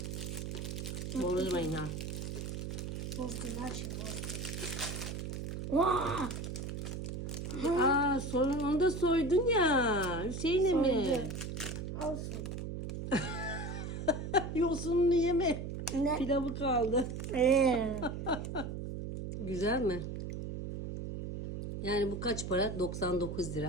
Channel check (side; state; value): right; noise; hum, 5 dB below the sound